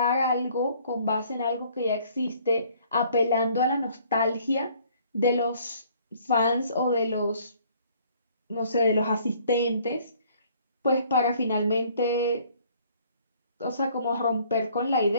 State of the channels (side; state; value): both; inverted; correlation -0.59